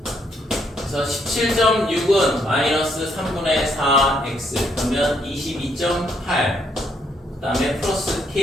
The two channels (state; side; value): normal; both; correlation 0.73